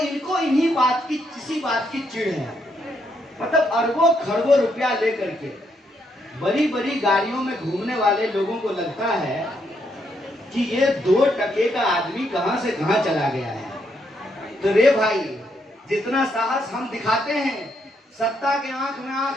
इन्हीं बात की, किसी बात की चिढ़ है। मतलब अरबों खरबों रुपया लेकर के बड़ी बड़ी गाड़ियों में घूमने वाले लोगों को लगता है कि ये 2 टके का आदमी कहां से कहां चला गया है। तो रे भाई, जितना साहस हम दिखाते हैं सत्ता के आंख में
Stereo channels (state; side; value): normal; both; correlation 0.76